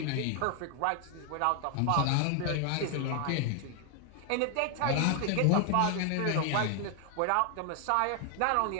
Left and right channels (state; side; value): different; both; correlation 0.00